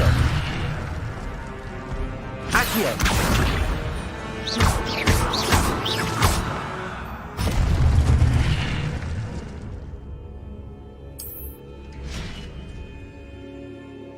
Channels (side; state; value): both; identical; correlation 1.00